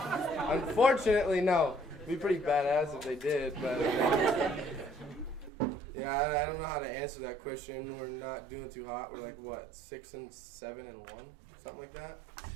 Unfortunately, no. It'd be pretty badass if they did, but... yeah, I don't know how to answer that question. We're not doing too hot. We're like, what, 6-7-1? Something like that?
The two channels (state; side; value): drops out; left; at 5.5 s